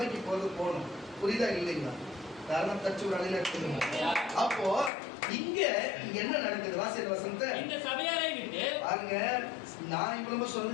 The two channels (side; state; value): right; drops out; at 4.9 s